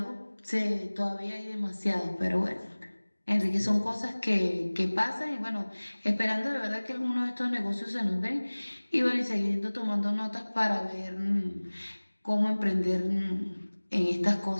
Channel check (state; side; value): inverted; both; correlation -1.00